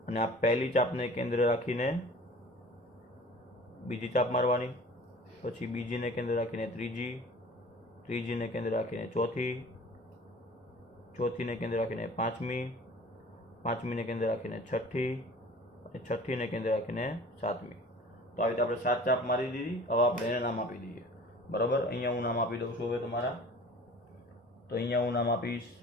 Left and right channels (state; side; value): normal; both; correlation 0.45